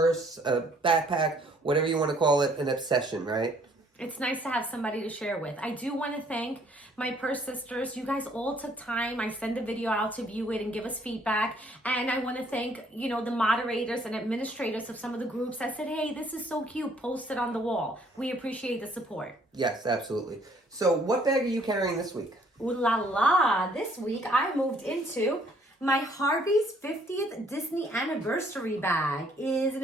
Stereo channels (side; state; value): both; normal; correlation 0.62